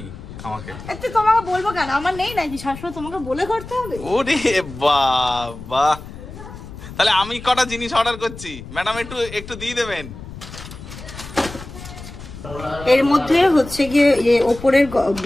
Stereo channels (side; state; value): left; noise; rumble, 13 dB below the sound